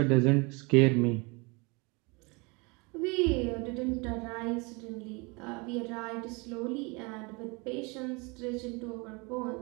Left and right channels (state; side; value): quieter; left; 28.4 dB